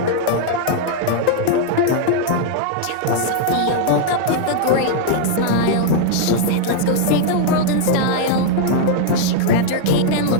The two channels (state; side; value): different; both; correlation 0.00